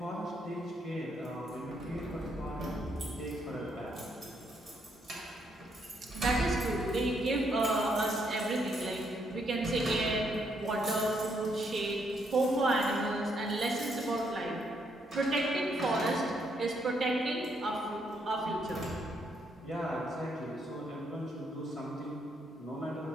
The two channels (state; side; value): normal; both; correlation 0.74